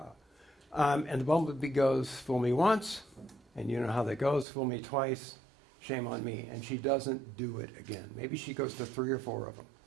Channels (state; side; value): drops out; left; at 4.5 s